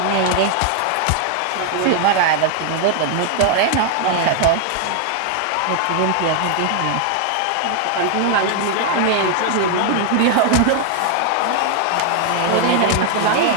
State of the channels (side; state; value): both; different; correlation 0.00